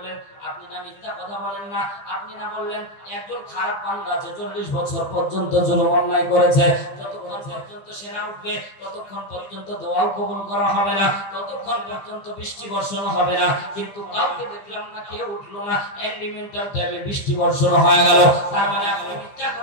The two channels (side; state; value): right; late; 15 ms